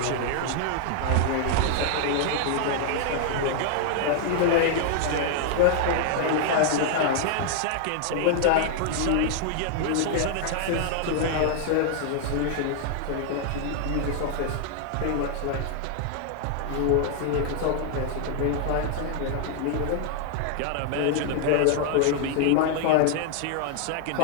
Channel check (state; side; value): different; both; correlation 0.00